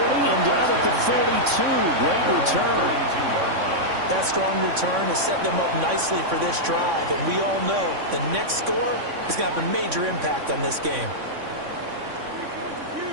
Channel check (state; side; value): late; left; 3.6 ms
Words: down at the 42. Great return. That strong return has set them up nicely for this drive, and we all know the next score is going to have a major impact on this game.